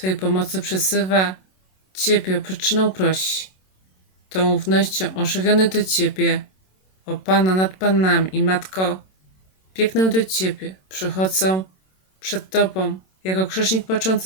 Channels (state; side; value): late; right; 27 ms